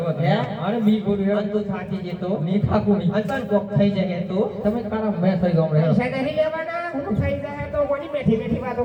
હે અરે મી બોલું અન તું થાકી જતો ની થાકું ની અંતન કોક થઈ જાય તો તમે તારા મેં થઈ ગયો પૈસા નહીં લેવાના હું થઈ જાય તો કોની બેઠી બેઠી વાતો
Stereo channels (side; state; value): both; identical; correlation 1.00